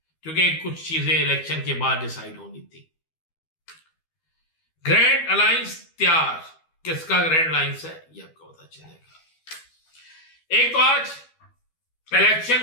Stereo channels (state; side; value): late; right; 12 ms